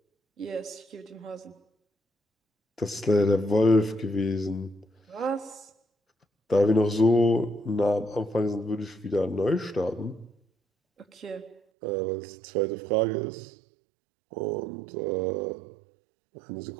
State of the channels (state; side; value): drops out; left; at 11.6 s